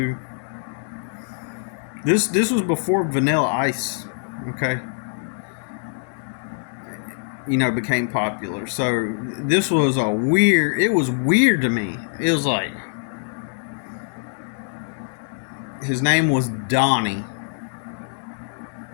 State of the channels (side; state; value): right; silent; 62 dB below the other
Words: This was before Vanilla Ice, okay? Became popular. So this was it was weird to me. It was like, his name was Donnie,